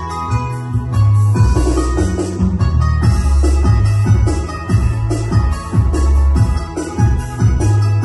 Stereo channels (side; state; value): both; identical; correlation 1.00